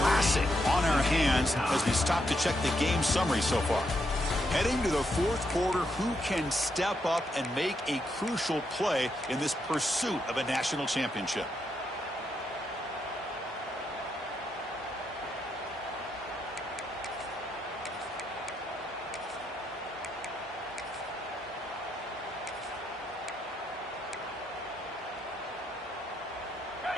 on our hands as we stop to check the game summary so far. Heading to the fourth quarter, who can step up and make a crucial play in this pursuit of a national championship?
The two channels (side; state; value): both; normal; correlation 0.79